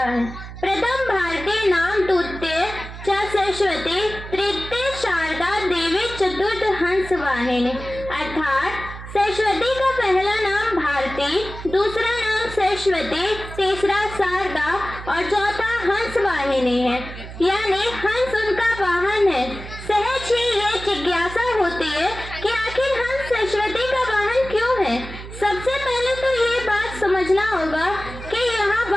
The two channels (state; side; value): noise; right; hum, 12 dB below the sound